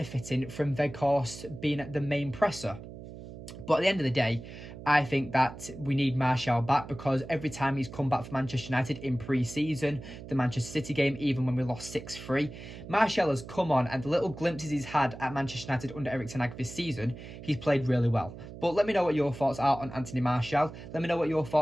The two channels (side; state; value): right; noise; hum, 13 dB below the sound